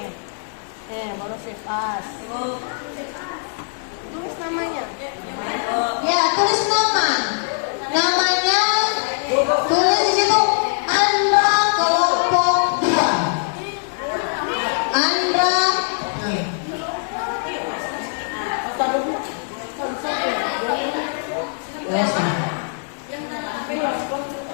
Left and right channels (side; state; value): right; silent; digital silence